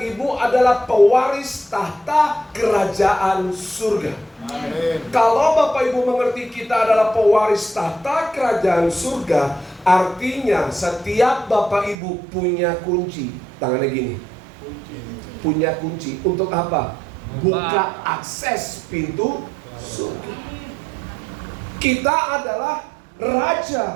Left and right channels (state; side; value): drops out; left; at 12.0 s